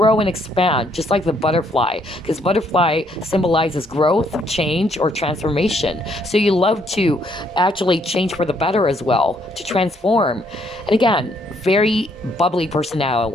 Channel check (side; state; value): both; normal; correlation 0.70